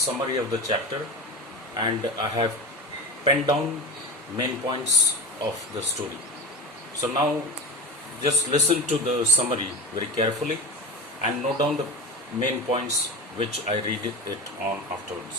of the chapter, and I have penned down main points of the story. So now just listen to the summary very carefully and note down the main points which I read it on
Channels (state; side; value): normal; both; correlation 0.27